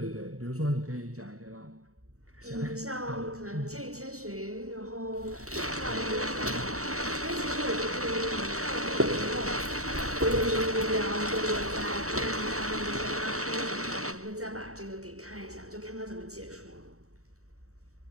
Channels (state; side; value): late; left; 0.64 ms